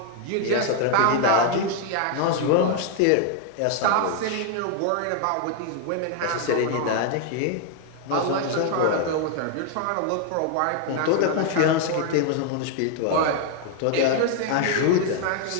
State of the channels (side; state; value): both; different; correlation 0.00